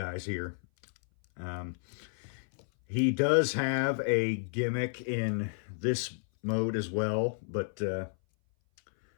here. He does have a gimmick in this mode as well, but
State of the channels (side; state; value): right; silent; 57 dB below the other